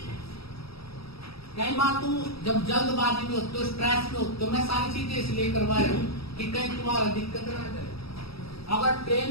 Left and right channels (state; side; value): late; right; 0.76 ms